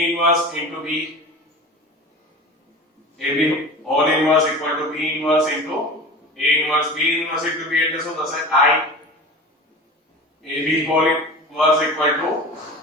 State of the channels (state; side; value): normal; both; correlation 0.34